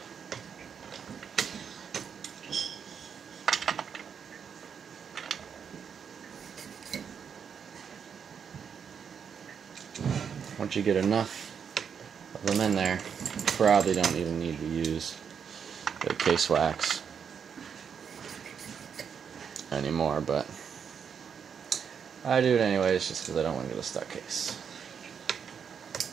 Once you get enough of them in there, you probably don't even need to use the case wax anymore, but I do it anyways just because I don't want to get a stuck case.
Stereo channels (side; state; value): left; quieter; 7.1 dB